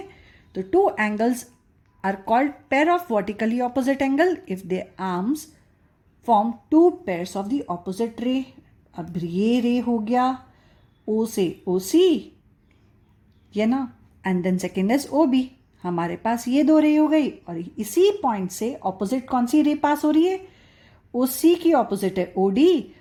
तो two angles are called pair of vertically opposite angle if they arms form two pairs of the opposite ray. अब ये रे हो गया O से OC, ये ना, and then second is OB. हमारे पास ये दो रे हो गई और इसी पॉइंट से ऑपोजिट कौन सी रे पास हो रही है, OC की ऑपोजिट है OD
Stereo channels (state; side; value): identical; both; correlation 1.00